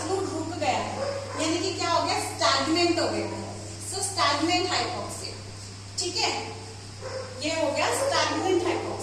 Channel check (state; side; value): identical; both; correlation 1.00